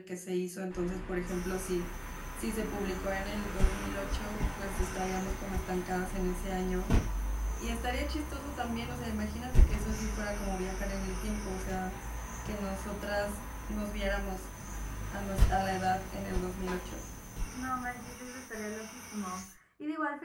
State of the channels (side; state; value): both; identical; correlation 1.00